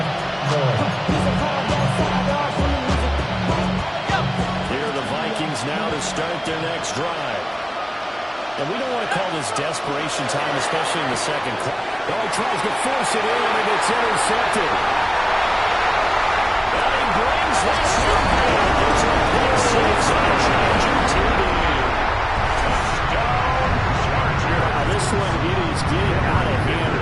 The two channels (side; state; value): both; identical; correlation 1.00